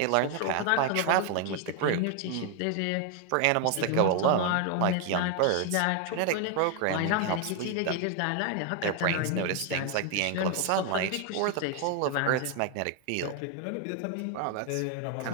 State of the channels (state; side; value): different; both; correlation 0.01